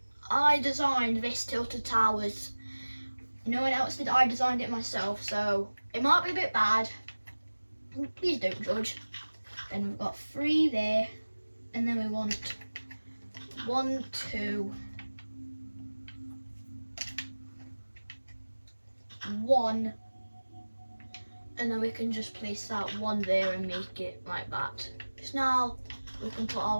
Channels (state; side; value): inverted; both; correlation -1.00